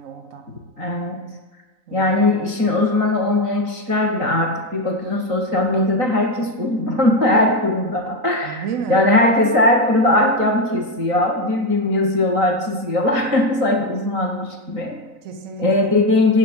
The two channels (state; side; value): late; left; 4.0 ms